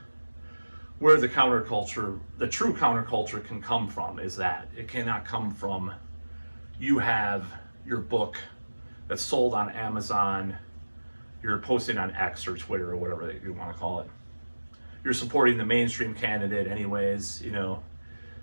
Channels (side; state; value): both; inverted; correlation -1.00